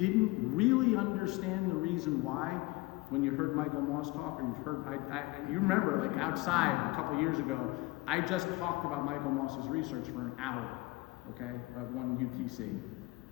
really understand the reason why when you heard Michael Moss talk, and you remember, like outside a couple years ago, I just talked about Michael Moss's research for an hour, okay, at one UTC.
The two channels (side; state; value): right; quieter; 21.6 dB